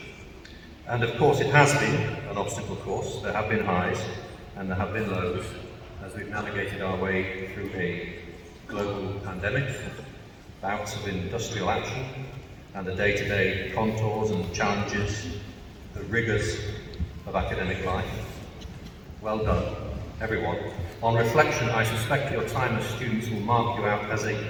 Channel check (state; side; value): identical; both; correlation 1.00